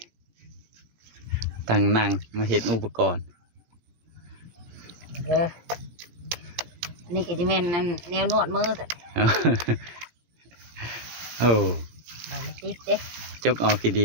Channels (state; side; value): late; left; 17 ms